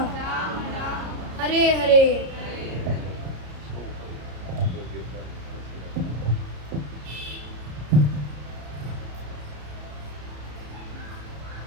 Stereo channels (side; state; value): left; late; 33 ms